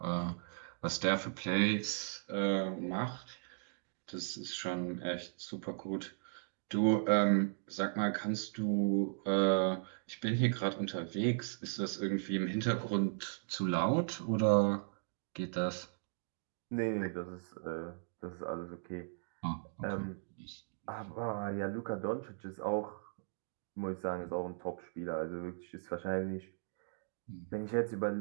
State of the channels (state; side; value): silent; left; digital silence